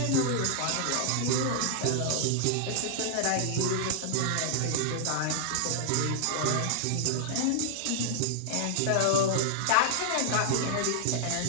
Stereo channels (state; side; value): different; both; correlation -0.01